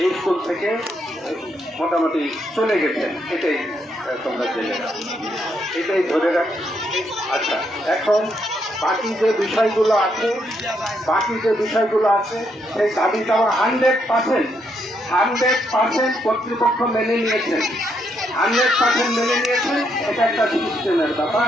স্কুল থেকে মোটামুটি চলে গেছেন। এটাই তোমরা জেনে রাখো, এটাই ধরে রাখো। আচ্ছা, এখন বাকি যে বিষয়গুলো আছে সেই দাবিটা 100% কর্তৃপক্ষ মেনে নিয়েছেন। 100% মেনে নিয়েছেন। এটা একটা সিস্টেমের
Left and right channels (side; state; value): both; normal; correlation 0.76